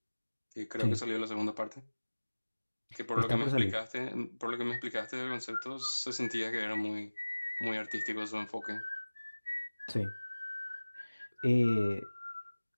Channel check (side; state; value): both; inverted; correlation -1.00